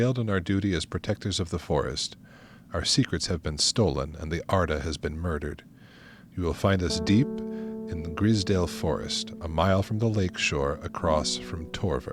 in our duty as protectors of the forest. Our secrets have been stolen, and the Arda has been murdered. You will find us deep in the Grisdale Forest, a mile from the lake shore across from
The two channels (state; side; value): identical; both; correlation 1.00